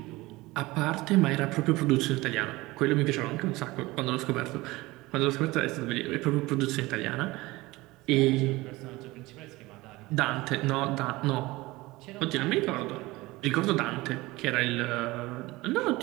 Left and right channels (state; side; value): quieter; left; 20.5 dB